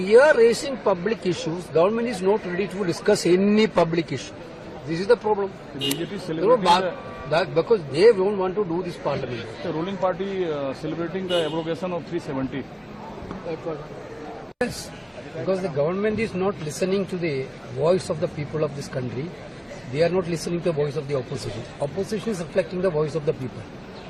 are raising public issues. Government is not ready to discuss any public issue. This is the problem. The BJP is celebrating because they don't want to do this parliament. the ruling party celebrating the abrogation of 370. Yes, because the government is not listening to the voice of the people of this country. They are not listening to the voice of the opposition. Opposition is reflecting the voice of the people.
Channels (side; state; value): both; identical; correlation 1.00